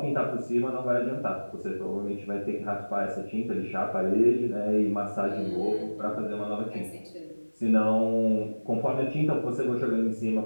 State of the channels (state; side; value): inverted; both; correlation -1.00